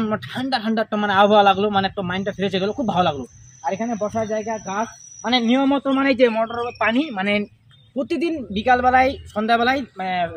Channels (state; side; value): identical; both; correlation 1.00